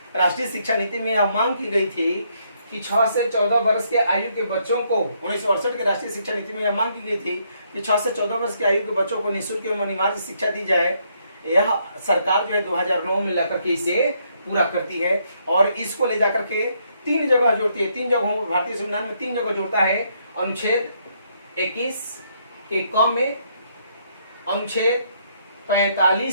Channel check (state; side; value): inverted; both; correlation -0.72